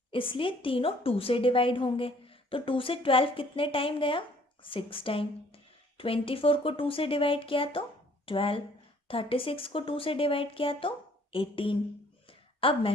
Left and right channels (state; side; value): normal; both; correlation 0.59